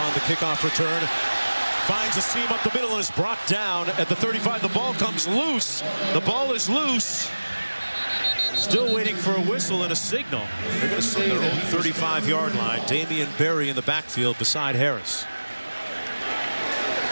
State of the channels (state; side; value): inverted; both; correlation -1.00